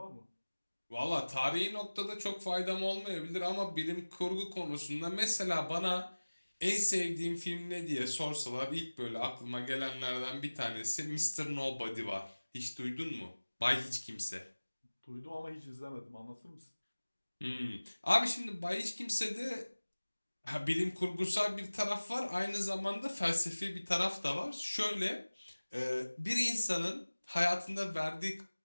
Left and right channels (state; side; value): inverted; both; correlation -1.00